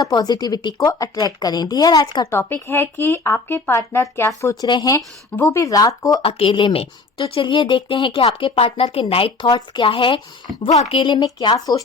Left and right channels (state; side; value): quieter; right; 3.9 dB